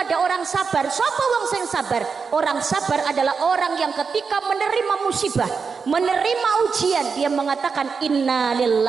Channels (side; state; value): left; quieter; 5.4 dB